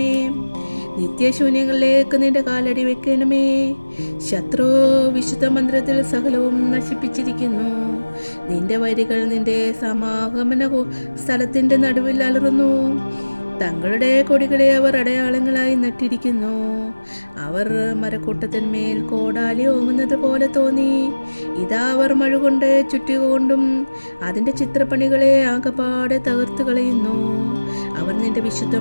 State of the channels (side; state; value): both; inverted; correlation -1.00